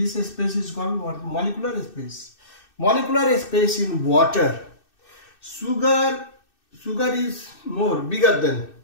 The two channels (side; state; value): right; late; 2.6 ms